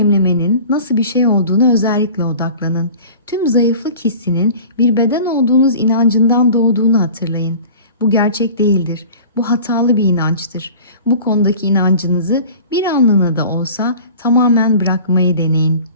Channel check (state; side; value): inverted; both; correlation -0.42